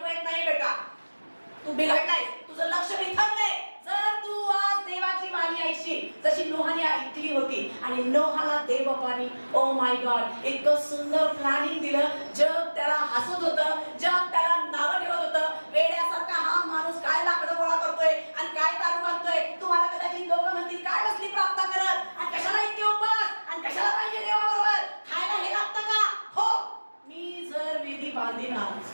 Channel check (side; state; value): both; inverted; correlation -1.00